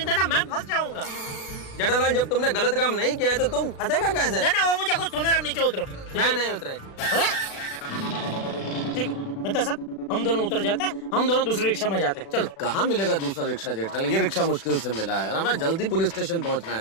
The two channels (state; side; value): late; right; 36 ms